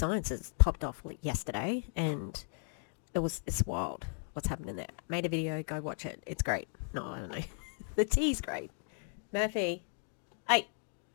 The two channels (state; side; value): silent; right; 54 dB below the other